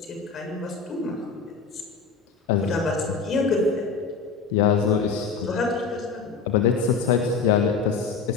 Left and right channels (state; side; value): quieter; right; 5.1 dB